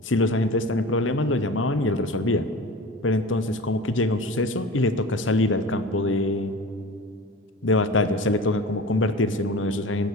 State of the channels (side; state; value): both; normal; correlation 0.35